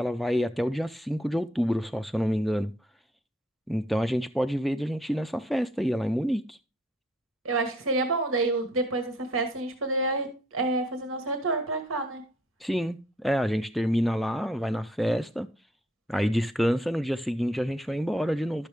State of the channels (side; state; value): both; normal; correlation 0.66